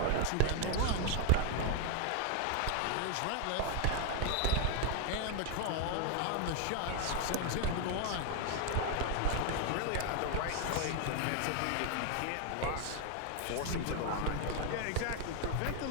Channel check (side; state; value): both; different; correlation 0.01